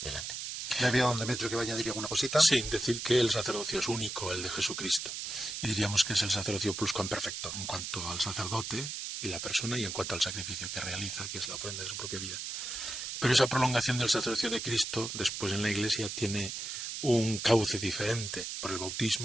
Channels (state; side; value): noise; right; hiss, 5 dB below the sound